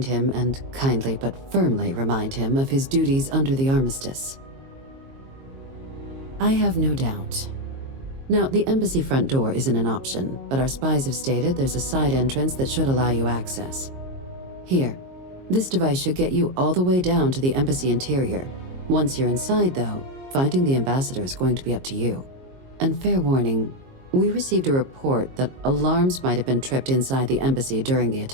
him and kindly but firmly remind him of his duties under the armistice. I have no doubt. Now, the embassy front door isn't an option, but our spies have stated there's a side entrance that should allow you access. Here, this device should get you all the way down to the embassy interior. Once you're inside, though, finding the ambassador is going to be up to you. And fair warning, we received a report that alarms might have been tripped inside the embassy during the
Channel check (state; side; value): late; left; 22 ms